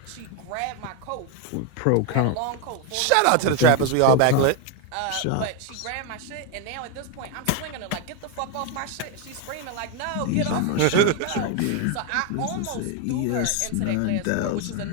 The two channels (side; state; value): both; different; correlation 0.01